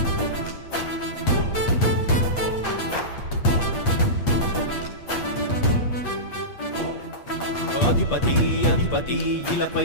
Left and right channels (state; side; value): late; right; 8.5 ms